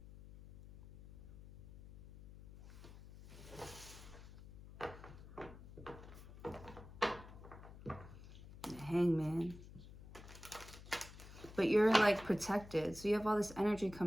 The Hangman. But you're like protected. So you have all this energy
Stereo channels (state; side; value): noise; left; hum, 16 dB below the sound